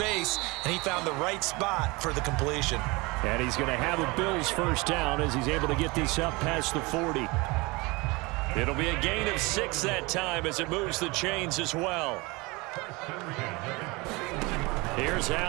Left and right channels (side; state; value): left; quieter; 24.8 dB